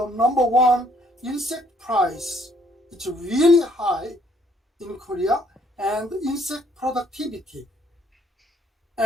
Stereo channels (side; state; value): both; normal; correlation 0.65